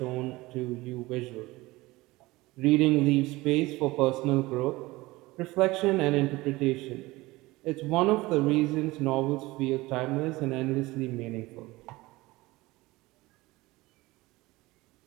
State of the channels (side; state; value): left; quieter; 20.4 dB